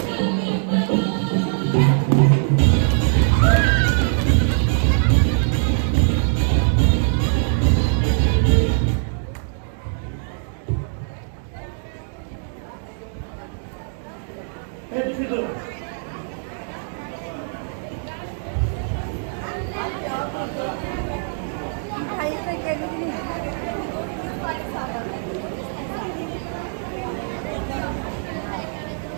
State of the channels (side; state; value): left; silent; digital silence